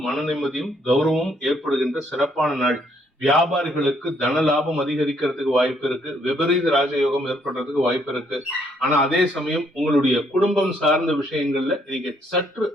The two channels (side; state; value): both; normal; correlation 0.69